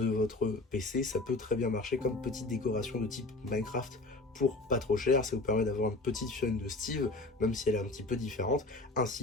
votre PC. Ça peut très bien marcher comme petite décoration de type Minecraft pour pas trop cher. Ça vous permet d'avoir une petite chaîne de Steve, même si elle est un petit peu différente,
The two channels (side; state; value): right; quieter; 3.0 dB